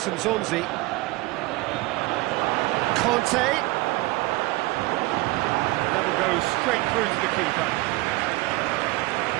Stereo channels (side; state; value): left; quieter; 20.8 dB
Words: Nzonzi. Conte. That will go straight through to the keeper.